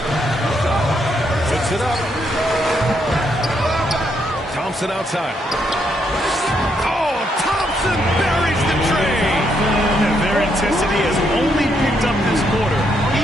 Puts it up. Thompson outside. Oh, Thompson buries the train. And their intensity has only picked up this quarter,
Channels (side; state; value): both; normal; correlation 0.76